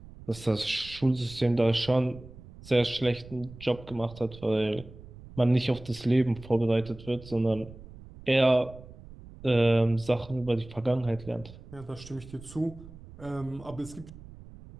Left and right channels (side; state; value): right; noise; rumble, 18 dB below the sound